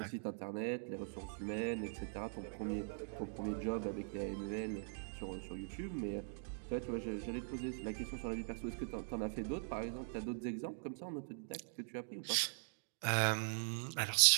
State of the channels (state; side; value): silent; left; digital silence